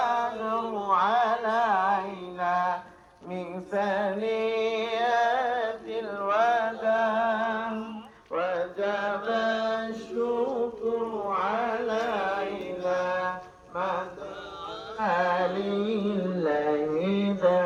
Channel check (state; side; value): identical; both; correlation 1.00